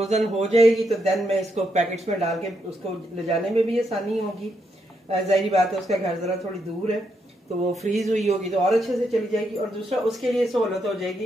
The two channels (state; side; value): normal; both; correlation 0.79